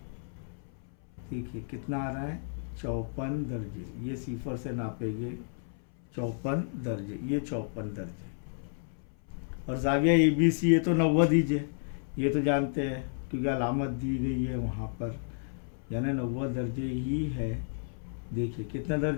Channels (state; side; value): silent; right; 57 dB below the other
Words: देखिए कितना आ रहा है 54 दर्जे, ये सिफर से नापेंगे 54 दर्जे, ये 54 दर्जे। और ज़ाविया ABC ये तो 90 दीजिए, ये तो जानते हैं क्योंकि अलामत दी गई है वहाँ पर, यानी 90 दर्जे ही है। देखिए कितने